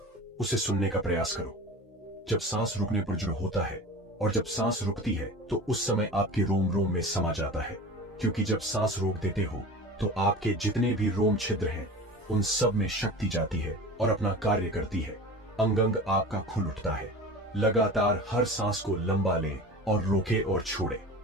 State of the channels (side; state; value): both; normal; correlation 0.35